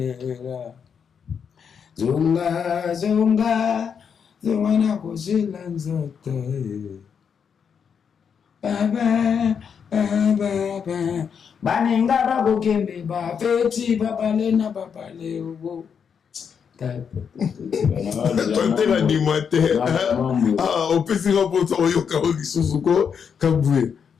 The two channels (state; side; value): quieter; right; 7.0 dB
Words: zunga na kusila nzote baba baninga bakokembe bafeti babale na babale ubo tantela ndima te opesika mposa oyoka o lisusu ko kabwe